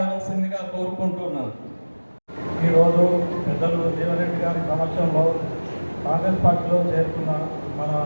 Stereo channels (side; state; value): both; inverted; correlation -1.00